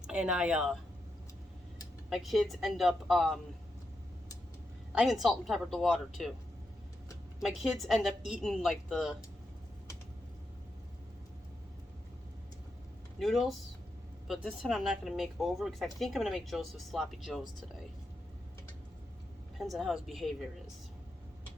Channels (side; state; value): both; normal; correlation 0.85